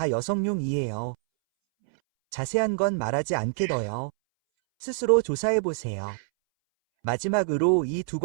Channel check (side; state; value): left; silent; 61 dB below the other